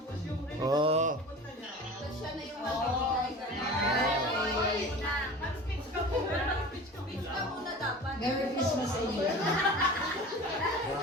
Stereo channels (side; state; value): both; normal; correlation 0.37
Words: Oh. Merry Christmas sa inyo.